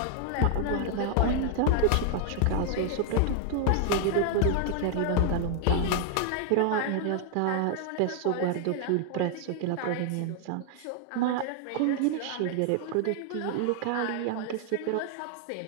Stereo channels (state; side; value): different; both; correlation 0.00